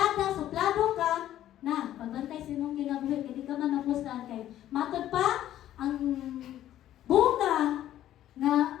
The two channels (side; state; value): right; quieter; 12.5 dB